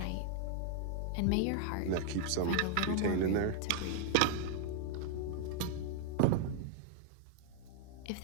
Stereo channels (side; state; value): both; different; correlation -0.01